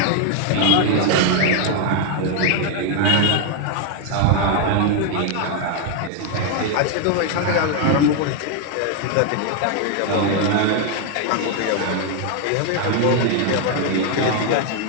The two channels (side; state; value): both; different; correlation 0.01